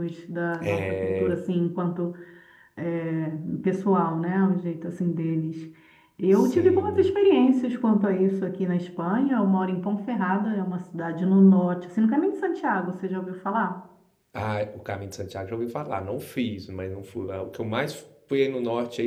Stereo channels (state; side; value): identical; both; correlation 1.00